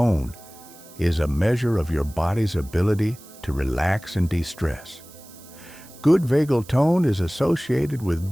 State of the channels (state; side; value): noise; right; hiss, 21 dB below the sound